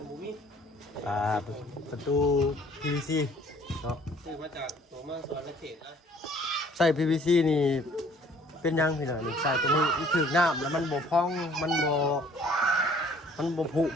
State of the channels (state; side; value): normal; both; correlation 0.56